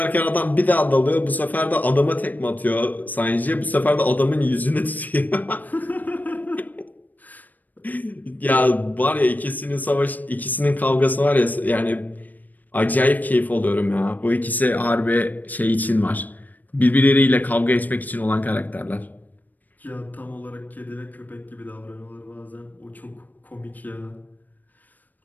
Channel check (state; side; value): late; right; 0.084 ms